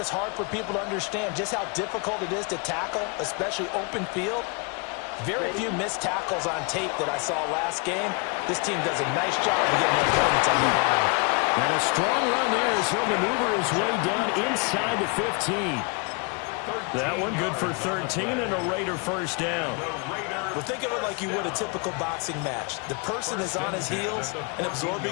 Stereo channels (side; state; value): right; quieter; 32.8 dB